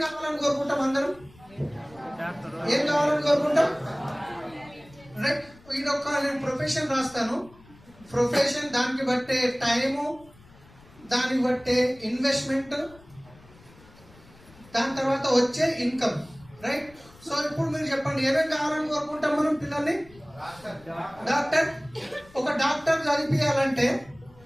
కావాలని కోరుకుంటాం? అందరం ఏం కావాలని కోరుకుంటాం? రైట్. ఇదొక నేను ప్రొఫెషన్ రాస్తాను, ప్రొఫెషన్ దానికి బట్టే టైము, దానికి బట్టే ఇన్వెస్ట్మెంట్, దాని తర్వాత వచ్చే ఇన్కమ్, రైట్. సో ఇప్పుడు మీరు చెప్పండి, ఏమేమి కావాలని కోరుకుంటాం మనం పిల్లల్ని? డాక్టర్. ఒక డాక్టర్ చదివించాలంటే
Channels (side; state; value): left; noise; rumble, 25 dB below the sound